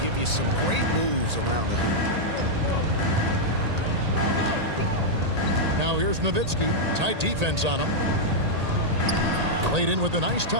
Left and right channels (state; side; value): late; left; 1.8 ms